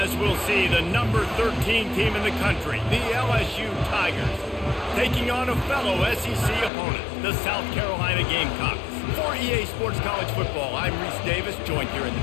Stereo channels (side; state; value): right; drops out; at 6.7 s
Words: we'll see, the number 13 team in the country, the LSU Tigers, taking on a fellow SEC opponent, the South Carolina Gamecocks. For EA Sports College Football, I'm Reese Davis, joined here in the